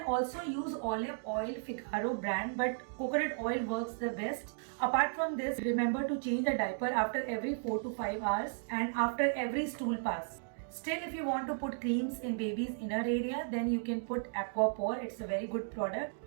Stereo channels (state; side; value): silent; left; digital silence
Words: also use olive oil, Figaro brand, but coconut oil works the best. Apart from this, remember to change the diaper after every 4 to 5 hours and after every stool pass. Still, if you want to put creams in baby's inner area, then you can put Aquapore. It's a very good product.